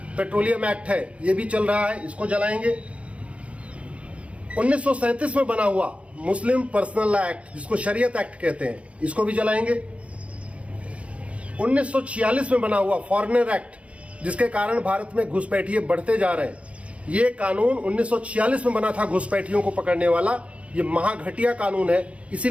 पेट्रोलियम एक्ट है, ये भी चल रहा है, इसको जलाएंगे। 1937 में बना हुआ मुस्लिम पर्सनल लॉ एक्ट, जिसको शरीयत एक्ट कहते हैं, इसको भी जलाएंगे। 1946 में बना हुआ फॉरेनर एक्ट, जिसके कारण भारत में घुसपैठिए बढ़ते जा रहे हैं। ये कानून 1946 में बना था घुसपैठियों को पकड़ने वाला। ये महाघटिया कानून है,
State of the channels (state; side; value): late; left; 0.062 ms